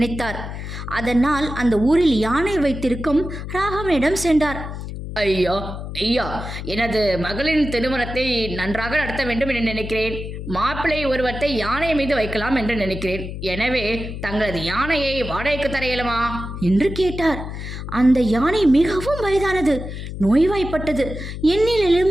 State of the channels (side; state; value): left; noise; hum, 8 dB below the sound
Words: அதனால் அந்த ஊரில் யானை வைத்திருக்கும் ராகவனிடம் சென்றார். ஐயா ஐயா, எனது மகளின் திருமணத்தை நன்றாக நடத்த வேண்டும் என்று நினைக்கிறேன். மாப்பிள்ளை உருவத்தை யானை மீது வைக்கலாம் என்று நினைக்கிறேன். எனவே தங்களது யானையை வாடகைக்கு தர இயலுமா என்று கேட்டார். அந்த யானை மிகவும் வயதானது, நோய்வாய்ப்பட்டது,